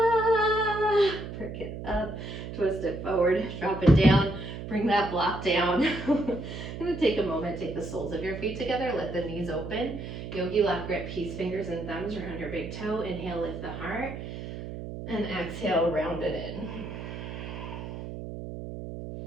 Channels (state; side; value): noise; right; hum, 8 dB below the sound